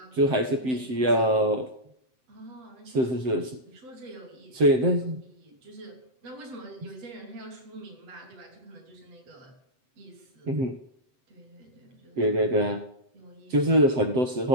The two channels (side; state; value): left; late; 7.7 ms